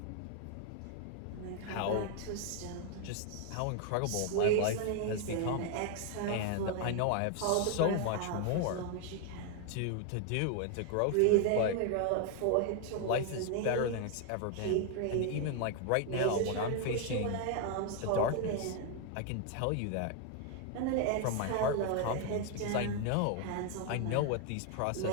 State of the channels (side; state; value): both; different; correlation 0.00